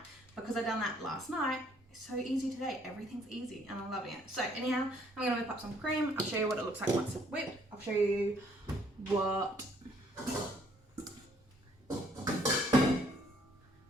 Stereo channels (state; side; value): normal; both; correlation 0.64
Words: Because I done that last night, it's so easy today. Everything's easy and I'm loving it. So anyhow, I'm gonna whip up some cream. I'll show you what it looks like once it's whipped. I'll show you